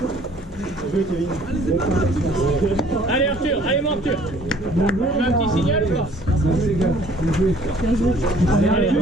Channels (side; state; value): both; normal; correlation 0.56